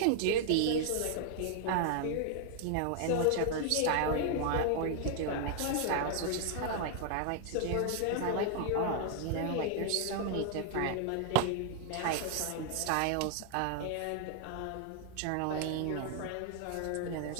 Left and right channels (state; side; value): different; both; correlation 0.00